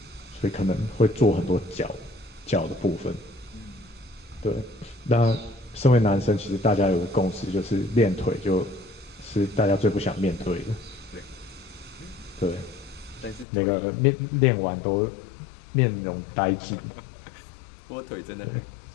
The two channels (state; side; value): drops out; right; at 13.5 s